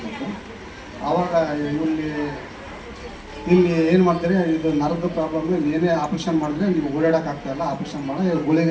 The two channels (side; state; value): both; identical; correlation 1.00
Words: ಆವಾಗ ಇಲ್ಲಿ ಏನು ಮಾಡ್ತಾರೆ, ಇದು ನರದ ಪ್ರಾಬ್ಲಮ್, ಏನೇ ಆಪ್ರೇಷನ್ ಮಾಡಿದ್ರೆ ನೀವು ಓಡಾಡೋಕ್ಕಾಗ್ತಾಯಿಲ್ಲ, ಆಪ್ರೇಷನ್ ಮಾಡಿ